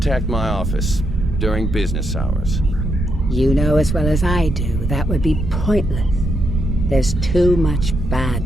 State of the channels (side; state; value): right; noise; rumble, 2 dB below the sound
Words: my office during business hours. You know as well as I do that would be pointless. There's too much